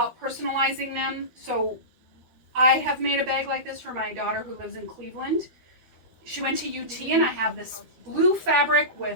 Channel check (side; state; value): left; late; 12 ms